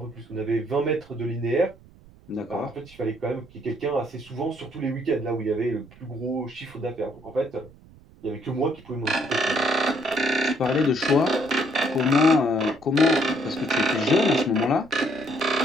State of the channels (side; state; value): right; noise; rumble, 24 dB below the sound